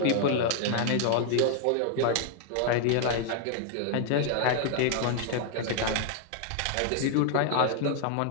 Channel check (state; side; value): different; both; correlation 0.00